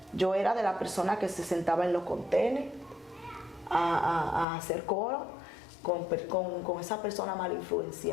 Yo era de la persona que se sentaba en los contenedores a hacer coro con esa persona mal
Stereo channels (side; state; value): right; drops out; at 4.5 s